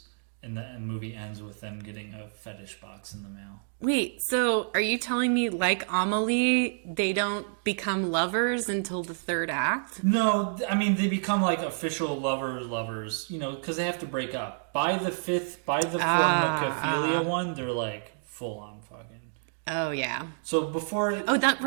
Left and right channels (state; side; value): silent; left; digital silence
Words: And the movie ends with them getting a fetish box in the mail. Wait, so are you telling me, like Amelie, they don't become lovers until the third act? No, I mean, they become like official lovers, because they have to break up. By the formicophilia one, they're like full on fucking. Oh, yeah. So before... Oh,